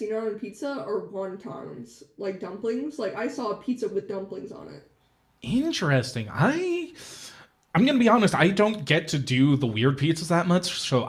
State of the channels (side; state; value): both; identical; correlation 1.00